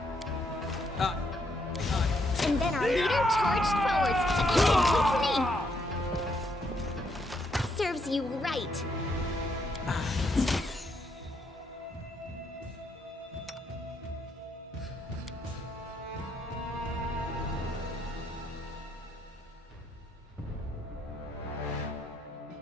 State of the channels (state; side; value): normal; both; correlation 0.75